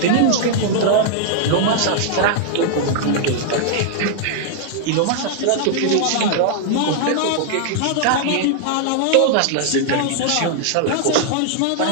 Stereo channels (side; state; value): both; different; correlation -0.01